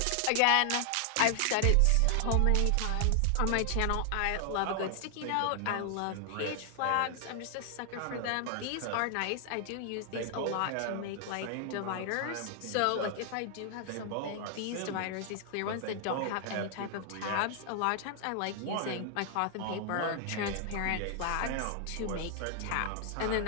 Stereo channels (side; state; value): both; different; correlation 0.00